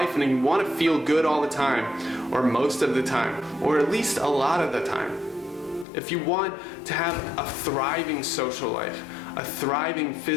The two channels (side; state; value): right; drops out; at 5.9 s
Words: and you want to feel good all the time, or most of the time, or at least a lot of the time, if you want to have a thriving social life, a thriving